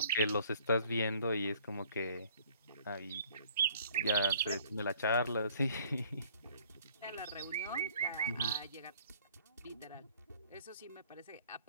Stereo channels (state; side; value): inverted; both; correlation -0.56